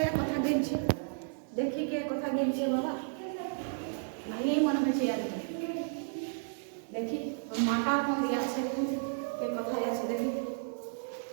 কথা গেলছে দেখি কে কথা গেলছে বাবা নেই মনে হচ্ছে দেখি মাটা কোন দিকে আছে কে কোথায় আছে দেখি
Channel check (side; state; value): left; silent; digital silence